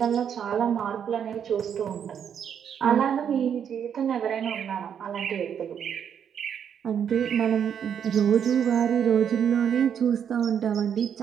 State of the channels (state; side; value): quieter; left; 8.3 dB